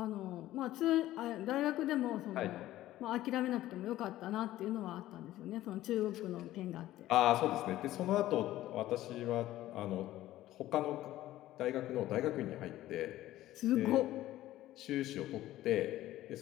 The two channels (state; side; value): quieter; right; 14.8 dB